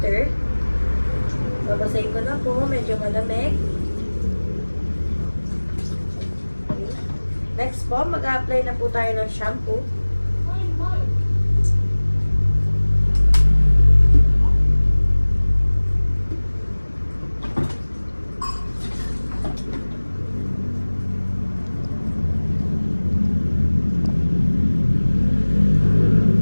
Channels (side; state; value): both; inverted; correlation -1.00